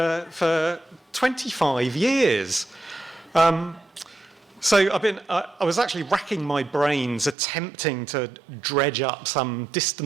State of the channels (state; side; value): drops out; left; at 7.4 s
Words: 25 years. So I was actually racking my brains attempting to dredge up some